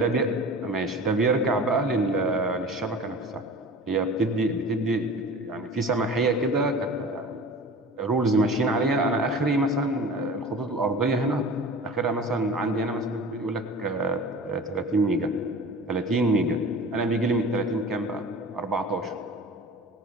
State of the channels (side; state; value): both; normal; correlation 0.39